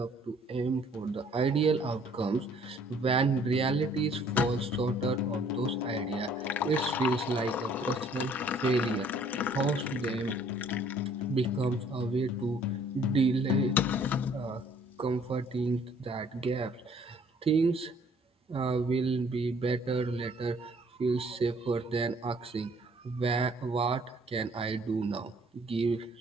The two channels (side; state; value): both; normal; correlation 0.59